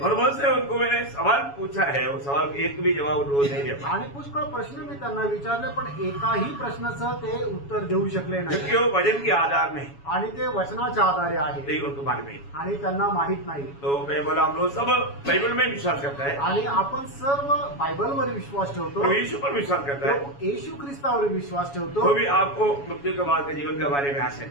मुझसे उनको मैंने सवाल पूछा है, वो सवाल का एक भी जवाब उनको नहीं दे पाया, आणि पुष्कळ प्रश्न मी त्यांना विचारले, पण एकाही प्रश्नाचं ते उत्तर देऊ शकले नाही। क्योंकि वो वजन के आधार नहीं, आणि ते वचनाच्या आधारे आहे, यही उनको मालूम नहीं। आणि त्यांना माहित नाही। तो मैं बोला हम लोग सब बाइबल में विश्वास करता है, आणि आपण सर्व बायबलवर विश्वास ठेवतो, प्रभु यीशु पर विश्वास करता है, प्रभू येशू ख्रिस्तावर विश्वास ठेवतो। तो भी आपको मृत्यु के बाद के जीवन के बारे में आशा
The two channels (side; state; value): right; late; 7.1 ms